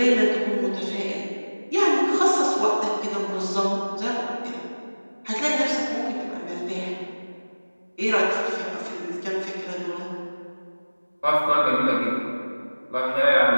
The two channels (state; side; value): inverted; both; correlation -1.00